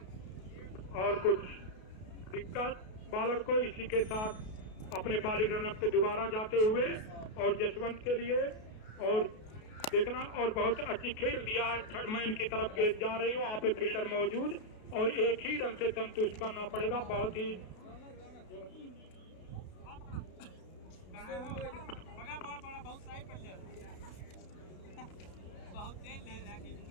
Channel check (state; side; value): late; right; 32 ms